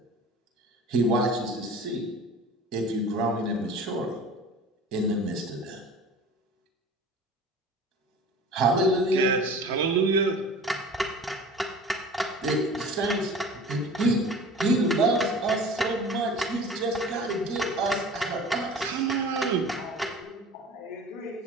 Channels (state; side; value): normal; both; correlation 0.41